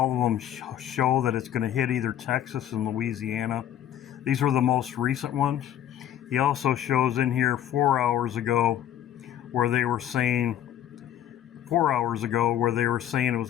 of them show that it's going to hit either Texas and Louisiana. These were the most recent ones. He also shows in here 4 hours ago where they were saying it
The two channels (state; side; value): quieter; right; 10.9 dB